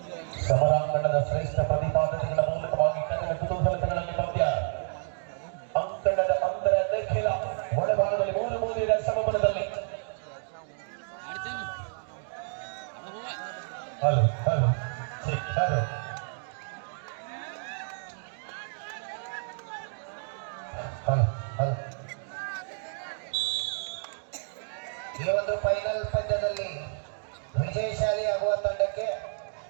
ಸಮರಾಂಗಣದ ಶ್ರೇಷ್ಠ ಪ್ರತಿಪಾದನೆಗಳ ಮೂಲಕವಾಗಿ ಕನ್ನಡ ಕುತೂಹಲತೆಗಳಲ್ಲಿ ಪಂದ್ಯ ಅಂಕಣದ ಅಂತರ ನಿಖಿಲ ಒಳಭಾಗದಲ್ಲಿ 3-3 ಸಮಬಲದಲ್ಲಿ. Hello hello hello hello hello ಈ ಒಂದು ಫೈನಲ್ ಪಂದ್ಯದಲ್ಲಿ ವಿಜಯಶಾಲಿ ಆಗುವ ತಂಡಕ್ಕೆ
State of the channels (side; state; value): left; silent; digital silence